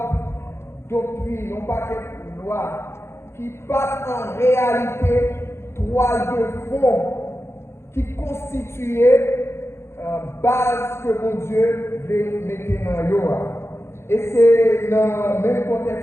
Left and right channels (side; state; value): right; late; 0.12 ms